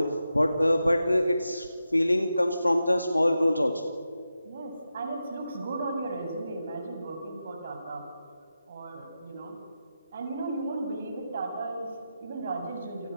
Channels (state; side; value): inverted; both; correlation -0.90